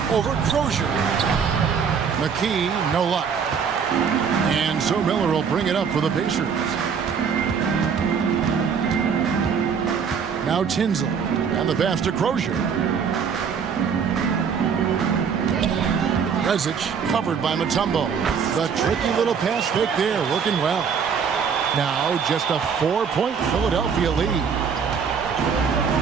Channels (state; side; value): quieter; left; 6.6 dB